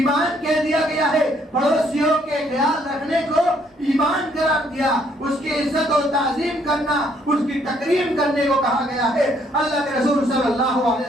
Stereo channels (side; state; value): both; normal; correlation 0.67